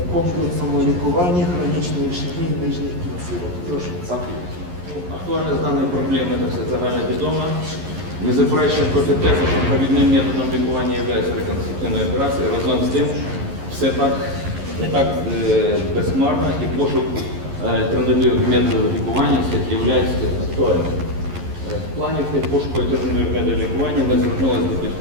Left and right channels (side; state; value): left; late; 11 ms